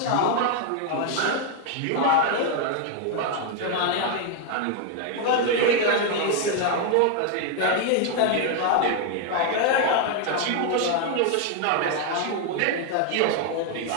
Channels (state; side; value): different; both; correlation 0.00